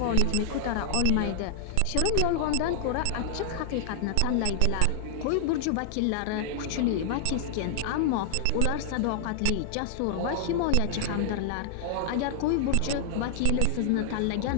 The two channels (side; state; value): both; different; correlation -0.01